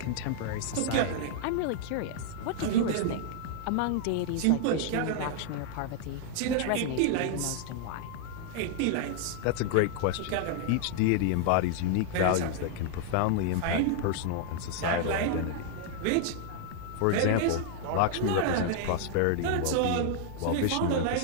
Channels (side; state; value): both; different; correlation 0.00